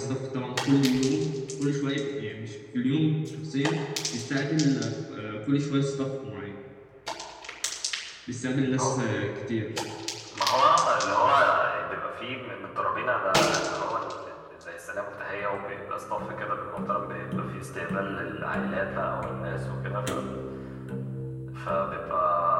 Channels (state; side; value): identical; both; correlation 1.00